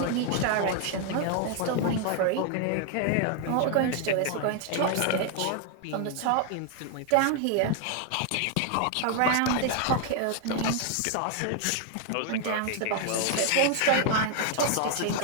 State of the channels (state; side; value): different; both; correlation 0.00